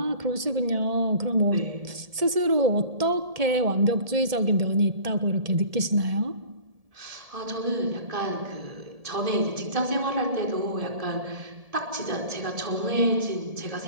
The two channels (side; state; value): left; late; 1.7 ms